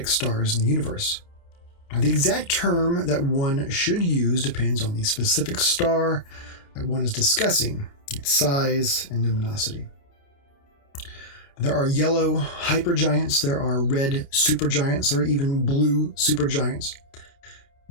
stars in the universe. Now, the exact term that one should use depends on the specific star that one is discussing, its size and luminosity. There are yellow hypergiants, there are red supergiants, there are even blue supergiants.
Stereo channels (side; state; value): right; late; 29 ms